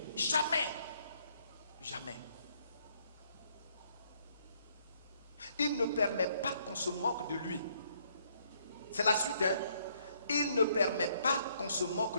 jamais. Jamais. Il ne permet pas qu'on se moque de lui. C'est la suite, hein? Il ne permet pas qu'on se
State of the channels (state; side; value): inverted; both; correlation -0.69